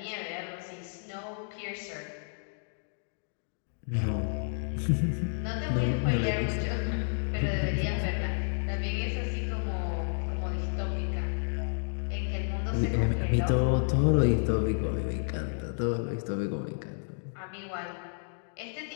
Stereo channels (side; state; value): right; silent; digital silence